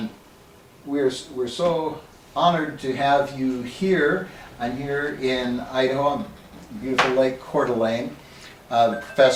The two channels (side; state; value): both; identical; correlation 1.00